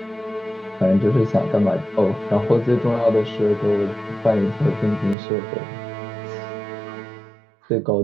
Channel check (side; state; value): left; drops out; at 5.2 s